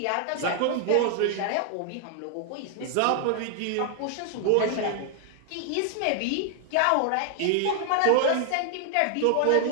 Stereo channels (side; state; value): both; different; correlation 0.00